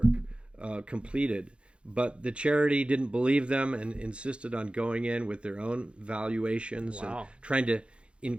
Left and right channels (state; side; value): late; left; 0.058 ms